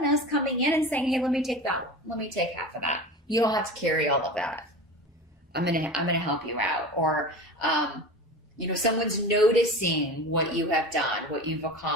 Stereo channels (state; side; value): normal; both; correlation 0.32